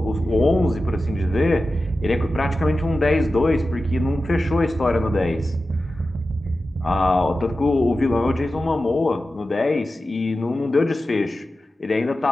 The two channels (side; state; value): both; normal; correlation 0.93